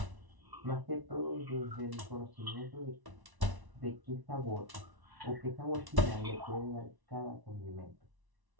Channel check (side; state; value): left; late; 1.1 ms